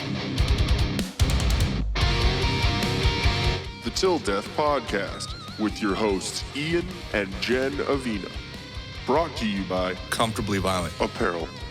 The Till Death Podcast with your hosts Ian and Jenn Avina. Brought to you by Comfortably Violent. Apparel.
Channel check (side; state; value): both; identical; correlation 1.00